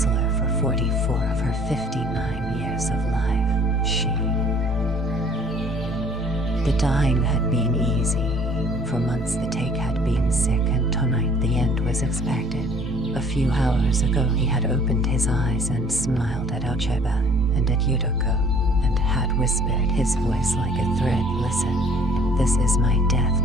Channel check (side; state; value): both; normal; correlation 0.55